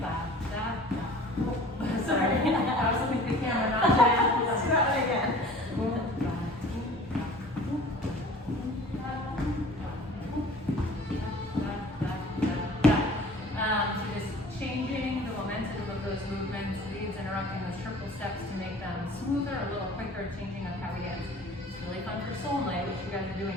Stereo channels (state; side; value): normal; both; correlation 0.46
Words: Sorry, I was looking at the camera, not Jen. Let's do that one again. So just changing the momentum of those movements, leads interrupting those triple steps to make them smoother, a little quicker, changing up how we dance. It's really fun for Soul Night, which you guys are doing